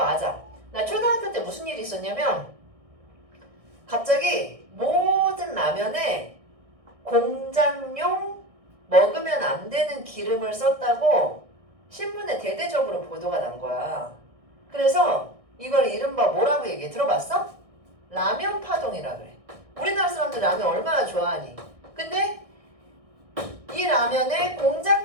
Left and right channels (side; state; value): left; late; 1.6 ms